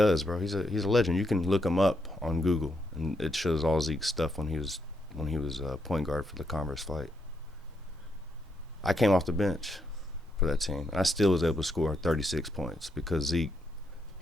bro. He's a legend. You can look him up on Google, and it shows all Zeke's stuff when he was point guard for the Converse flight. I came off the bench for that team, and I still was able to score 36 points because Zeke,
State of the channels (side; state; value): both; normal; correlation 0.79